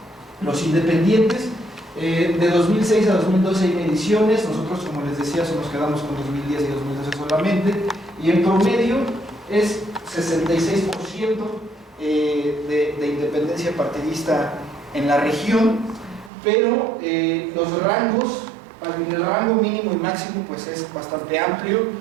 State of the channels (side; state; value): left; drops out; at 16.3 s